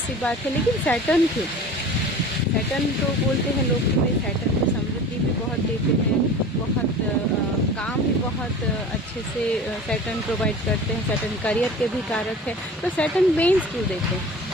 सी बात है, लेकिन सैटर्न क्यों? सैटर्न तो बोलते हैं लोग कि सैटर्न को समृद्धि भी बहुत देते हैं, बहुत काम भी बहुत अच्छे से सैटर्न प्रोवाइड करते हैं, सैटर्न करियर के भी कारक है। तो सैटर्न पेन्स क्यों देते हैं?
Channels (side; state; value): both; normal; correlation 0.38